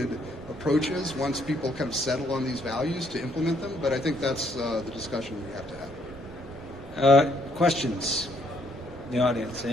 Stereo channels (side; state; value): both; normal; correlation 0.68